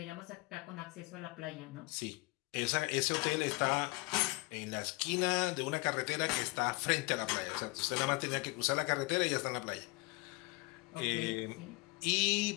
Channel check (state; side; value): quieter; right; 25.4 dB